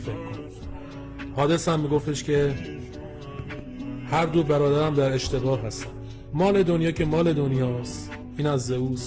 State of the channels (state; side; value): identical; both; correlation 1.00